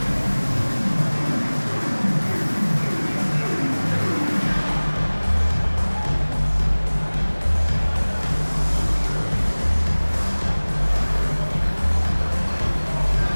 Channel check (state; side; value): inverted; both; correlation -1.00